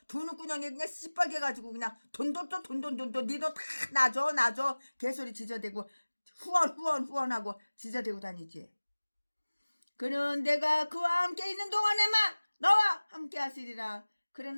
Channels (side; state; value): both; inverted; correlation -1.00